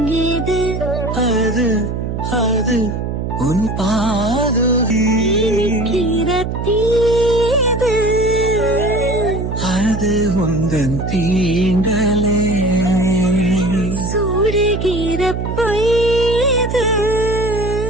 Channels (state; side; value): noise; right; hum, 3 dB below the sound